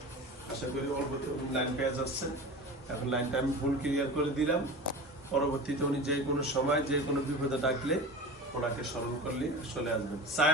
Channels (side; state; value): both; normal; correlation 0.32